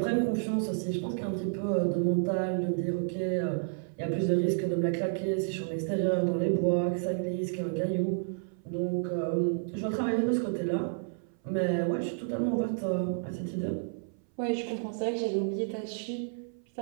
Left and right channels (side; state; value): left; silent; 57 dB below the other